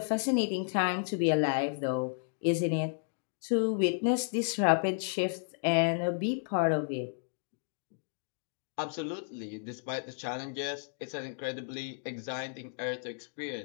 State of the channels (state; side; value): silent; right; digital silence